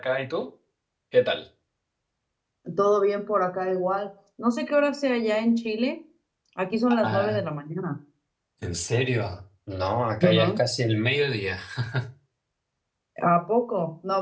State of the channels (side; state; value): both; identical; correlation 1.00